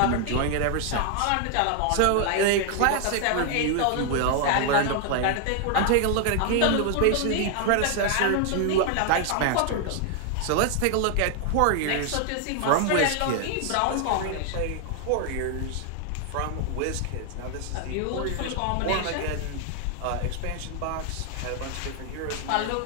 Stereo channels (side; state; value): both; different; correlation 0.00